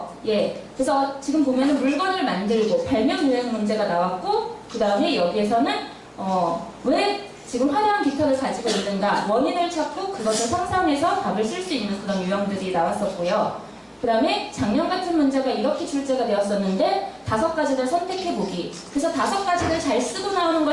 예, 그래서 지금 보면은 물건을 만들고 발명 유형 문제가 나왔고 그 다음에 여기에서는 왜 지금 화려한 깃털을 가지고 있는가 원인을 찾고 그것을 상상해서 답을 쓸 수 있는 그런 유형들이 나왔었고요. 그 다음에 작년 같은 문제가 이렇게 출제가 되었었는데 5가지를 선택해보기. 그래서 5가지를 잘 쓰고 나오는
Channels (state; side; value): identical; both; correlation 1.00